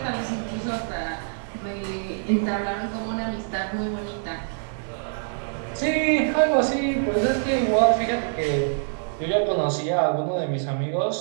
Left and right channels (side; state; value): left; silent; 61 dB below the other